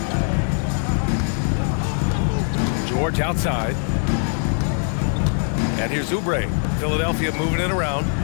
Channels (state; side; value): silent; right; 57 dB below the other